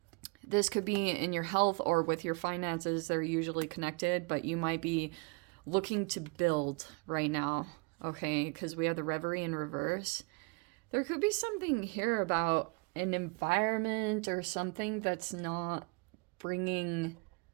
This could be in your health or with your finances. They're usually connected, but you might be looking to build right now, okay? Because we have the Reverie in reverse. There could be something here about an environment or something that's not bringing...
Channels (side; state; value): left; quieter; 30.9 dB